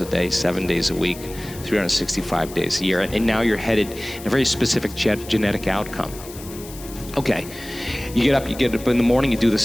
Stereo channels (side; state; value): left; noise; hiss, 16 dB below the sound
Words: a day, 7 days a week, 365 days a year, and now you're headed in a very specific genetic outcome. Okay, you get up in the morning, you do the